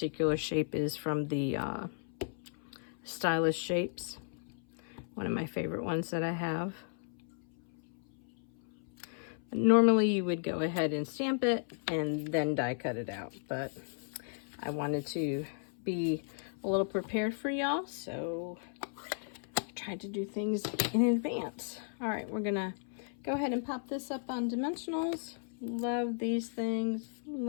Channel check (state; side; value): silent; right; 55 dB below the other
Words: shape is from the Stylish Shapes, one of my favorite ones that I have. Normally you would go ahead and stamp it and then die cut it out, but I wanted to be a little prepared for y'all, so I tried to do things in advance. All right, we're gonna go ahead and pop this up on dimensionals. Love these things,